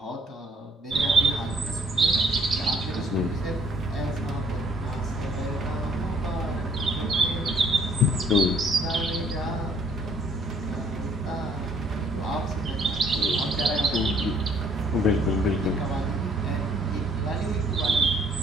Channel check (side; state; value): both; normal; correlation 0.63